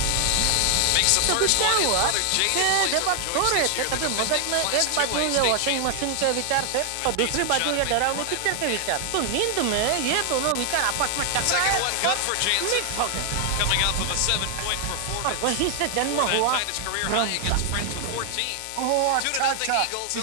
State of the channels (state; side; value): different; both; correlation 0.00